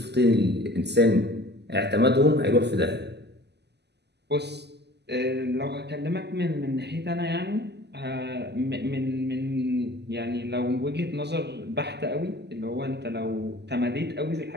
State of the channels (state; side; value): late; left; 0.50 ms